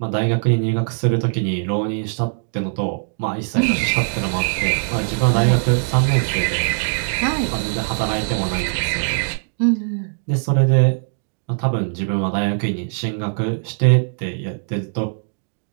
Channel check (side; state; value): left; silent; digital silence